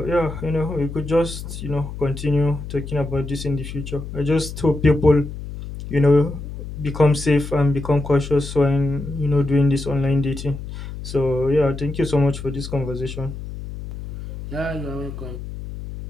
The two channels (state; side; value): noise; left; hum, 9 dB below the sound